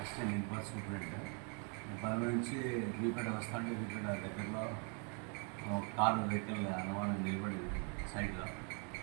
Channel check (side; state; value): left; quieter; 38.1 dB